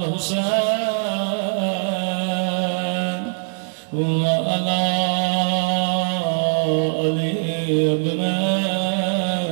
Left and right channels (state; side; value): silent; left; 65 dB below the other